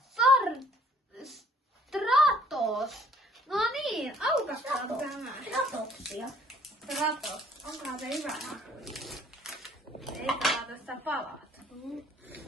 Stratos. No niin, aukastaan tämä. Stratoksia. Stratos. Onkohan se hyvä haku? Ei saa tästä palata.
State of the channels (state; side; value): normal; both; correlation 0.59